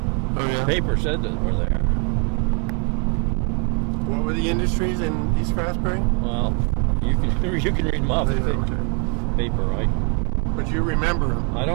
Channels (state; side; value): quieter; left; 36.8 dB